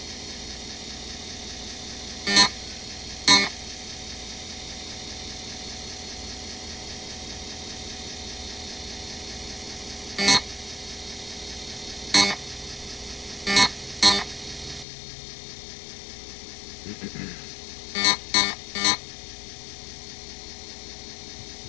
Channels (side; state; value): right; drops out; at 14.9 s